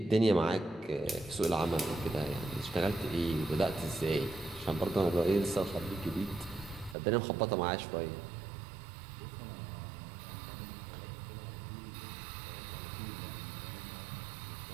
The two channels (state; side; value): drops out; left; at 7.0 s